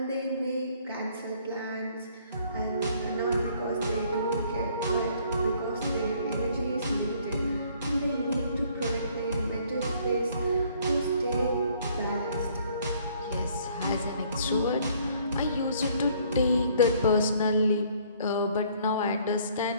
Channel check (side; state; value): both; inverted; correlation -0.61